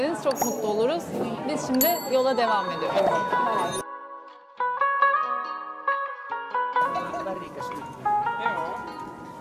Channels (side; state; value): both; identical; correlation 1.00